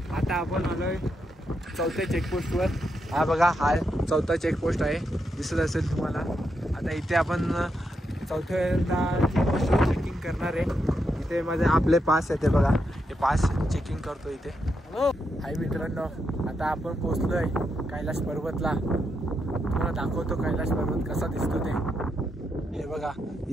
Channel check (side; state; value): both; normal; correlation 0.82